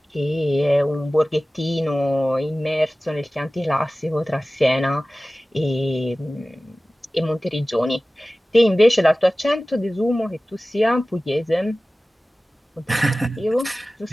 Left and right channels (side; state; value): both; normal; correlation 0.97